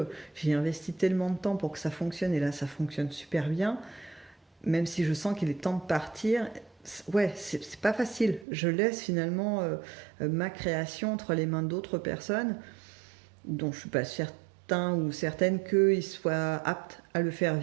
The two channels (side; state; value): left; drops out; at 8.5 s